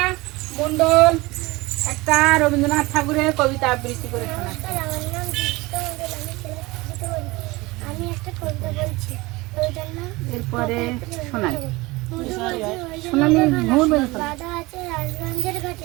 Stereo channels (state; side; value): quieter; left; 22.2 dB